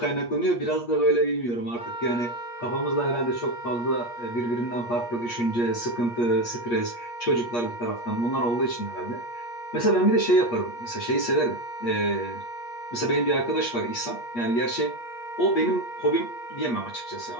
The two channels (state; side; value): late; right; 8.4 ms